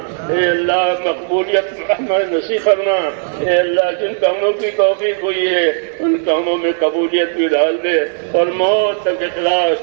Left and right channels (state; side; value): silent; left; digital silence